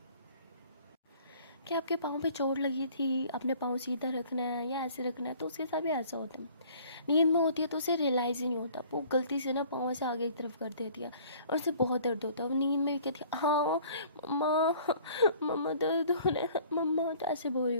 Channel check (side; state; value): both; inverted; correlation -0.53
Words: आपके पाँव पे चोट लगी थी, अपने पाँव सीधा रखना है या ऐसे रखना है। तो उसके साथ भी ऐसा होता है, नींद में होती है तो उसे रियलाइज़ ही नहीं होता, वो गलती से ना पाँव से आगे की तरफ कर देती है और उसे बहुत दर्द होता है। वो नींद में भी कहती है हाँ मम्मा, मम्मा दर्द हो रहा है मम्मा, तो ऐसे बोल रही